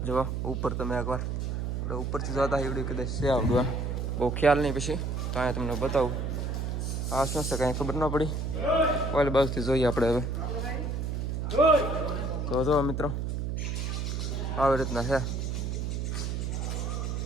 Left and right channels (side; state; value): right; noise; hum, 2 dB below the sound